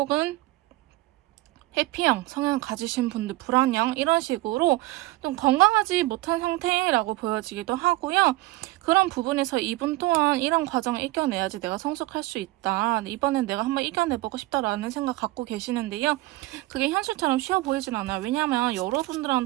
회피형 성향 가지신 분들, 불안형, 이런 식으로 좀 건강하지 못한 상태라고 보여지기도 하고요. 그런 부분에서 이분 또한 이런 과정을 이겨내야지 내가 성숙할 수 있다, 이번엔 내가 한번 이겨내보고 싶다라는 생각 갖고 계시는데요. 그게 현실처럼 쉬워 보이진 않아요. 왜냐하면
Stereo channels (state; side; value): quieter; left; 19.2 dB